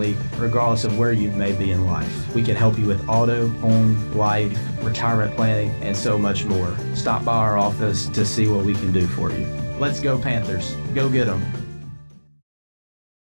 regardless of where you may be in life. We can help you with auto, home, life, retirement planning, and so much more. Stop by our office to see what we can do for you. Let's go Panthers. Go get 'em.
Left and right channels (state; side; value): inverted; both; correlation -1.00